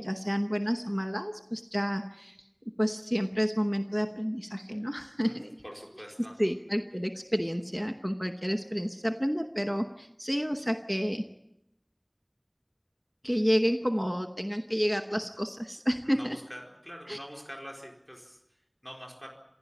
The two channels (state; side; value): identical; both; correlation 1.00